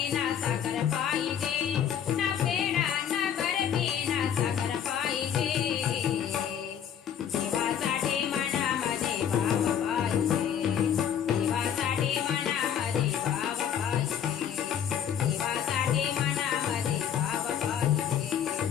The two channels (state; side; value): quieter; right; 8.9 dB